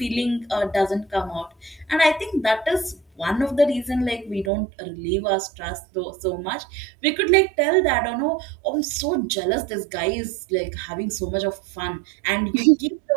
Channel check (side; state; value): left; drops out; at 4.5 s